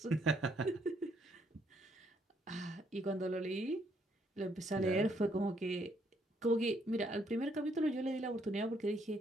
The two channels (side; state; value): both; normal; correlation 0.71